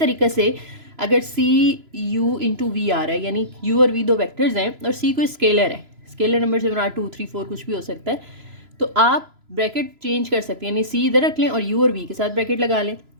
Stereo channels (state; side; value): late; left; 3.0 ms